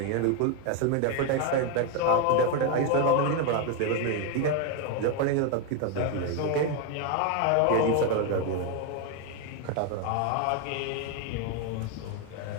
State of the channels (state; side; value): different; both; correlation 0.02